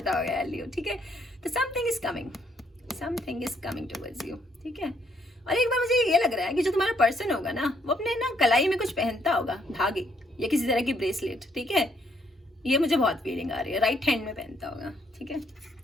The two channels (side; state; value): both; normal; correlation 0.70